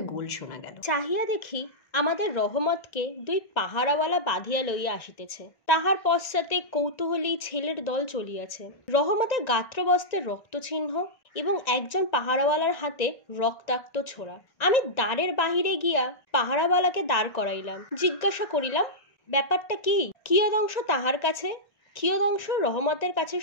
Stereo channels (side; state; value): right; late; 1.9 ms